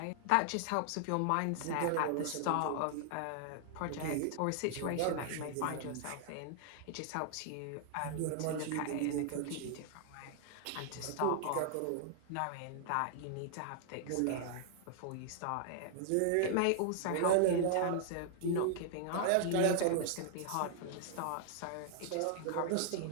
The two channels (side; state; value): both; different; correlation -0.01